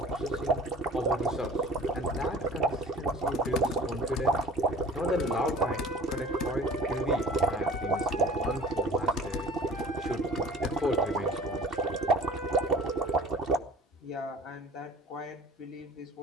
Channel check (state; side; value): normal; both; correlation 0.45